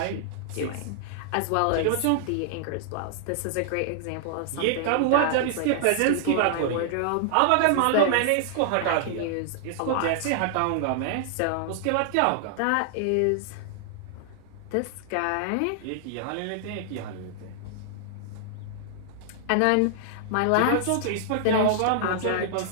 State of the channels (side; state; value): both; different; correlation -0.01